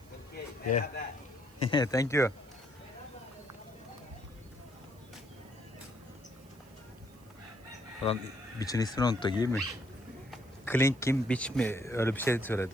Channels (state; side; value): noise; right; hiss, 28 dB below the sound